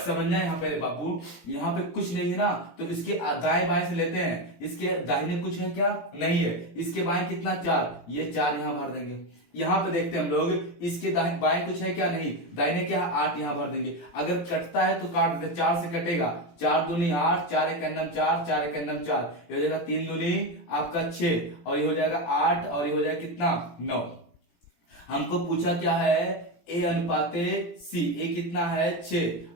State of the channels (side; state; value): right; late; 17 ms